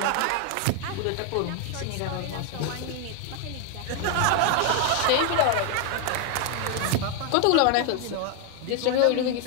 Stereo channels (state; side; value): different; both; correlation 0.01